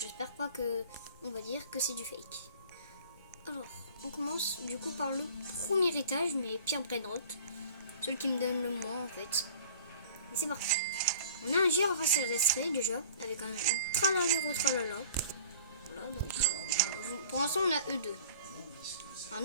pas que on va dire que c'est du fake. Alors on commence du coup par le premier étage, mais Pierre Brainrot, celui qui me donne le moins en fait. Et c'est parti. On a un girafe terrestre déjà, avec un tralalero tralala. Voilà, donc pour l'instant on a E2. Un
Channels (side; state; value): both; inverted; correlation -0.46